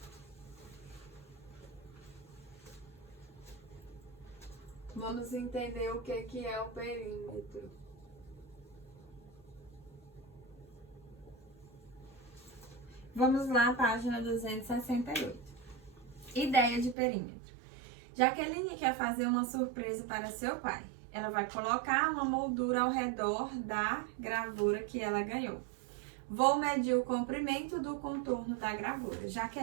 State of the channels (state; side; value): drops out; left; at 16.9 s